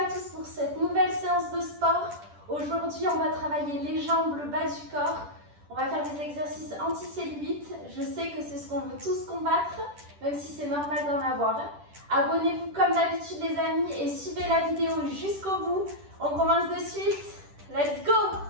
à tous pour cette nouvelle séance de sport. Aujourd'hui, on va travailler les jambes, le bas du corps. On va faire des exercices anti-cellulite. Je sais que c'est ce qu'on veut tous combattre, même si c'est normal d'en avoir. Abonnez-vous comme d'habitude les amis et suivez la vidéo jusqu'au bout. On commence de suite. Let's go!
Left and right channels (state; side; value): late; left; 10 ms